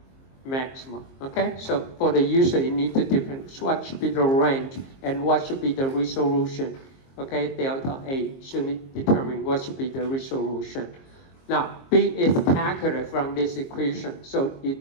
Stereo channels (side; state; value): right; late; 22 ms